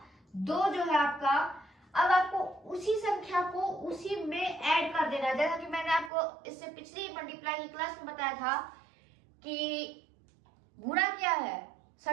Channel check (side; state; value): left; drops out; at 6.1 s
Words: 2 जो है आपका, अब आपको उसी संख्या को उसी में ऐड कर देना है। जैसा कि मैंने आपको इससे पिछली मल्टीप्लाई की क्लास में बताया था कि गुणा क्या है,